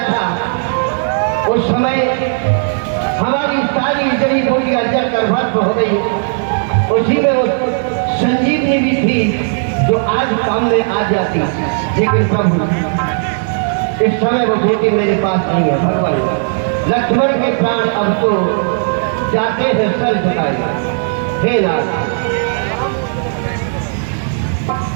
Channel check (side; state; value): left; silent; digital silence